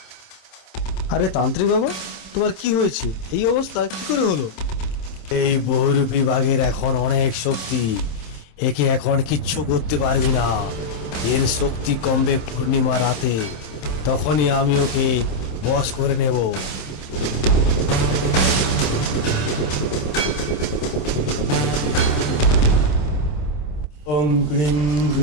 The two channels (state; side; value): late; right; 26 ms